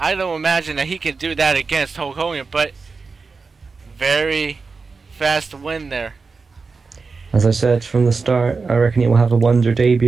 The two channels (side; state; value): left; quieter; 4.5 dB